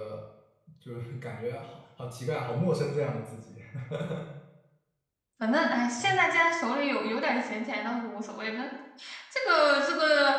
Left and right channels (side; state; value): both; identical; correlation 1.00